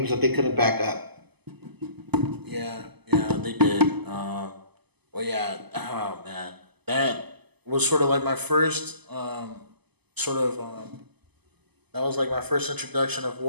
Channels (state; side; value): late; left; 0.99 ms